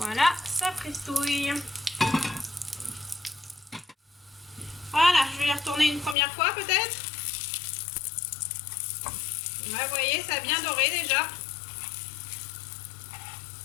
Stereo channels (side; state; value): right; drops out; at 6.2 s